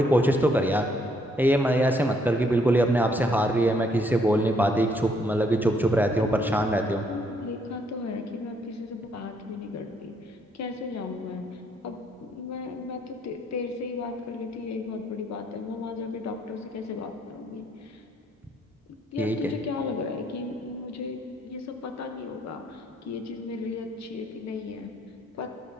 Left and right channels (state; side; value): normal; both; correlation 0.69